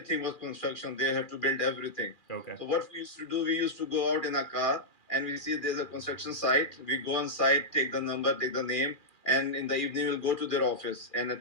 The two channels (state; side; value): late; right; 2.4 ms